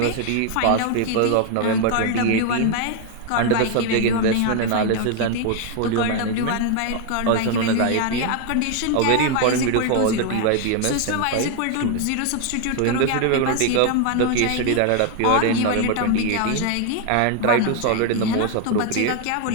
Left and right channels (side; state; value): both; different; correlation 0.01